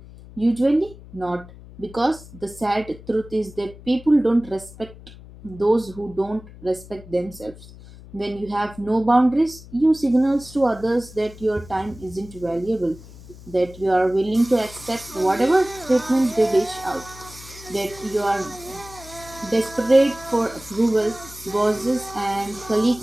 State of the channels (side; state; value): left; noise; hum, 18 dB below the sound